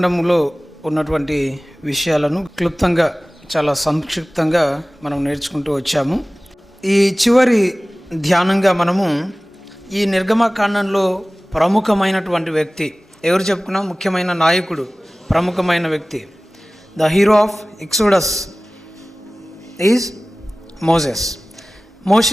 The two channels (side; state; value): both; normal; correlation 0.98